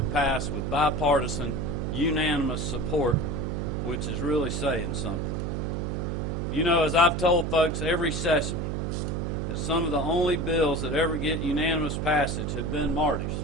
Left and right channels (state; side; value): noise; right; hum, 1 dB below the sound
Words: passed with bipartisan, unanimous support, which is really saying something. You know, as I've told folks every session, that some of the only bills that ever get unanimous passage have been Marty's.